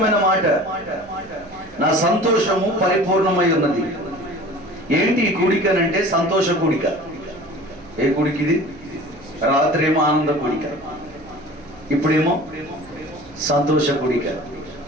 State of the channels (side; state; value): right; noise; hum, 22 dB below the sound